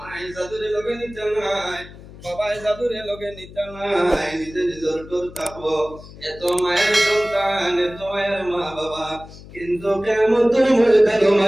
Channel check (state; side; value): noise; left; hum, 18 dB below the sound